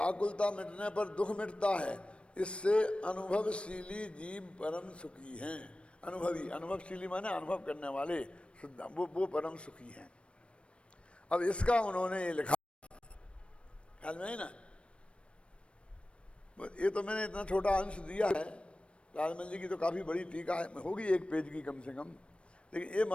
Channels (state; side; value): late; right; 0.059 ms